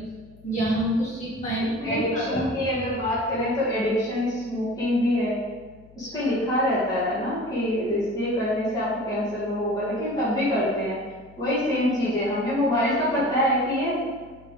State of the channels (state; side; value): noise; left; hum, 24 dB below the sound